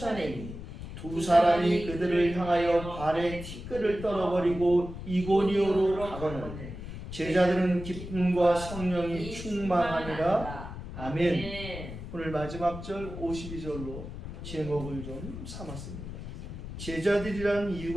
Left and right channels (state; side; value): noise; left; rumble, 10 dB below the sound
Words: 두 사람이 그들을 향하여 발에 티끌을 떨어버리고 이고니오로 가거늘 제자들은 기쁨과 성령이 충만하니라. 아멘. 오늘 마지막 절 52절로 제목을 좀 삼았습니다. 제자들이라는